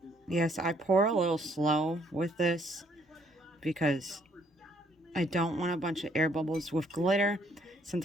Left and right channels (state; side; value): normal; both; correlation 0.67